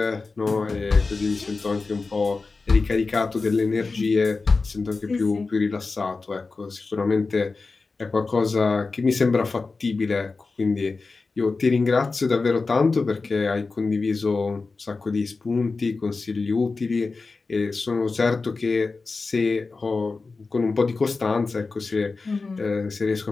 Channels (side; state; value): right; quieter; 4.0 dB